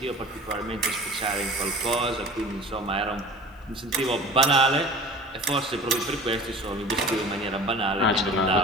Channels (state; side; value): normal; both; correlation 0.40